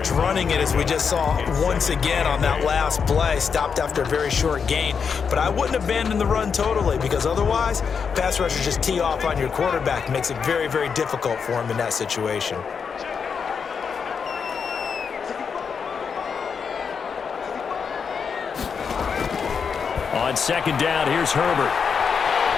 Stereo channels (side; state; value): right; quieter; 6.2 dB